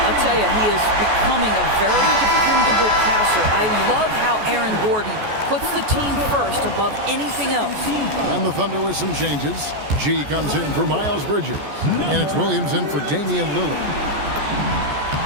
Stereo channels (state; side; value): late; left; 14 ms